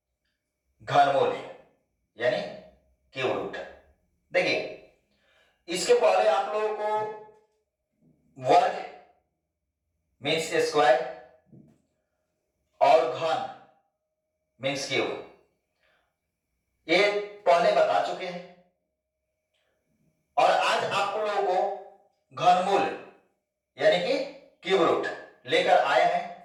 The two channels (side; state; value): both; identical; correlation 1.00